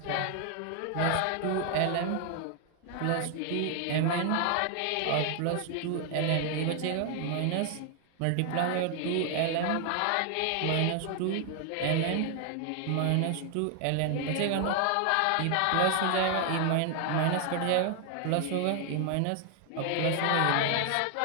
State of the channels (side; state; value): both; different; correlation 0.00